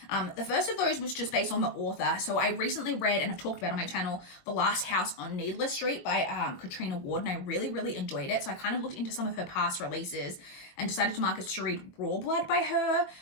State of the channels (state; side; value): late; right; 22 ms